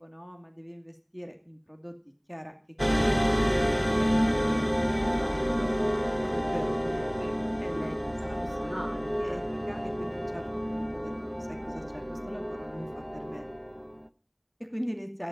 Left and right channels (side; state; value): both; identical; correlation 1.00